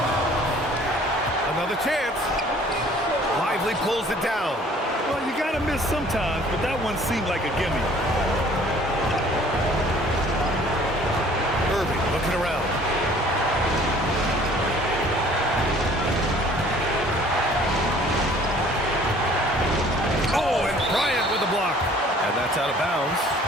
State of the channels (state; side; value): normal; both; correlation 0.54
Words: Another chance. Lively pulls it down. Well, you gotta miss sometimes, but that one seemed like a gimme. Irving looking around. That's out of bounds.